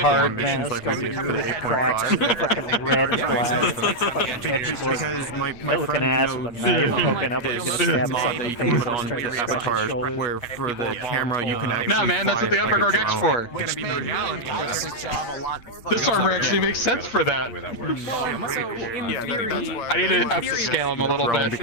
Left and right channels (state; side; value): late; right; 8.6 ms